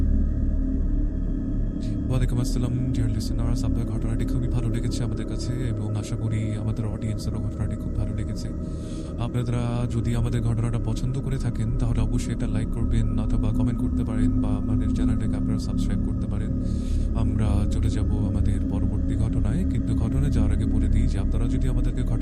ওয়ালাইকুম আসসালাম ডিয়ার লিসেনার্স, আপনার ঘটনাটি খুবই ভালো লেগেছে আমাদের কাছে এবং আশা করি আমাদের অডিয়েন্সেরও ঘটনাটি খুব ভালো লেগেছে। আপনারা যদি আমাদের ঘটনাটা পছন্দ করে থাকেন তাহলে অবশ্যই এটা লাইক করবেন অথবা কমেন্ট করতে পারেন বা আমাদের চ্যানেলটাকে আপনারা সাবস্ক্রাইব করতে পারেন। আমরা চলে যাব আমাদের পরবর্তী ঘটনায়, কিন্তু ঘটনায় যাওয়ার আগে বলে দিই যে আপনারা যদি আমাদেরকে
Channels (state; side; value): identical; both; correlation 1.00